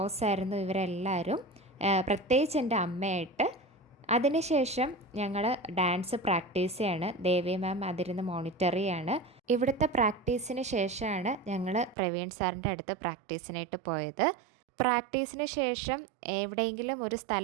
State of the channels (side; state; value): left; drops out; at 12.0 s